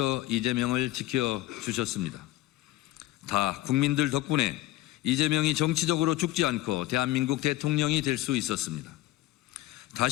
이재명을 지켜주셨습니다. 다 국민들 덕분에 이재명이 정치적으로 죽지 않고 대한민국 대통령이 될 수 있었습니다.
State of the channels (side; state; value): right; quieter; 16.2 dB